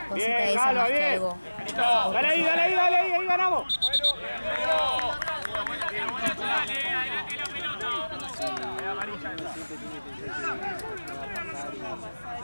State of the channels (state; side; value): inverted; both; correlation -1.00